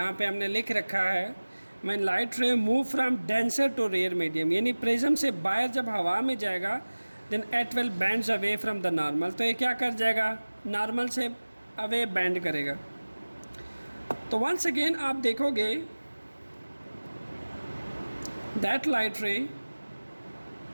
पे हमने लिख रखा है, when light ray move from denser to rare medium, यानी प्रिज्म से बाहर जब हवा में जाएगा, then it will bends away from the normal. तो ये क्या कर जाएगा? नॉर्मल से अवे बैंड करेगा। तो वंस अगेन आप देखोगे दैट लाइट रे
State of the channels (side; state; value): both; inverted; correlation -1.00